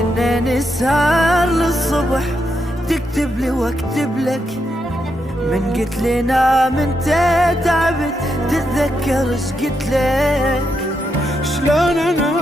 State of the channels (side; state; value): both; normal; correlation 0.82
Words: نسهر للصبح تكتب لي واكتب لك، من قلت لي نام انت تعبت تتذكر ايش قلت لك. شلون